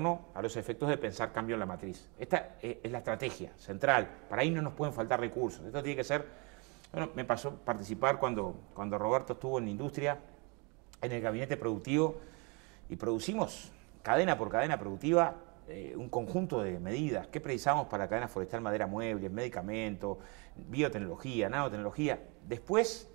a los efectos de pensar cambio en la matriz. Esta es la estrategia central. Para ahí no nos pueden faltar recursos. Esto tiene que ser... Bueno, me pasó participar cuando Roberto estuvo en la industria, en el gabinete productivo, y producimos cadena por cadena productiva un conjunto de medidas. ¿Qué precisamos para la cadena forestal, madera, muebles, medicamentos, biotecnología, nanotecnología? Después,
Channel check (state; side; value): quieter; left; 31.4 dB